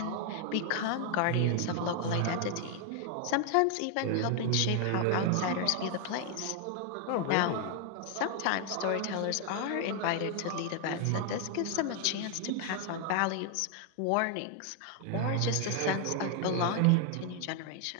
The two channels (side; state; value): both; different; correlation 0.00